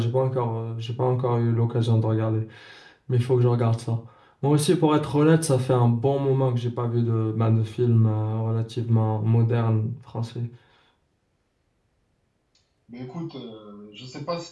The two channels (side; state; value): both; identical; correlation 1.00